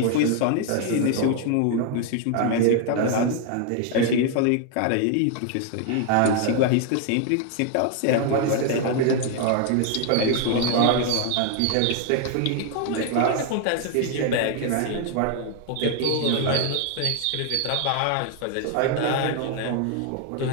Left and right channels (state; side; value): different; both; correlation 0.00